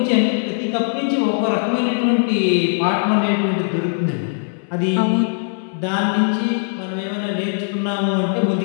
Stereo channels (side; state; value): right; silent; 66 dB below the other